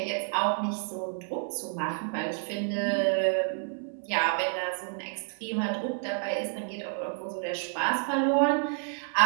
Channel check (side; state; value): left; silent; 58 dB below the other